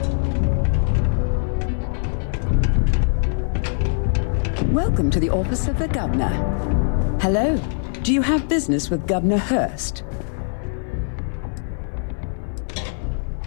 Welcome to the office of the governor. Hello. Do you have business with Governor Hurst?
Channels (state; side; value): silent; right; digital silence